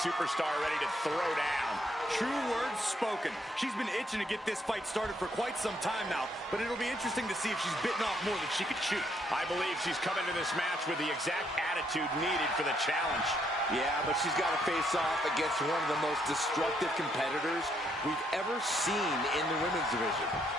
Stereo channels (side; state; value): both; normal; correlation 0.73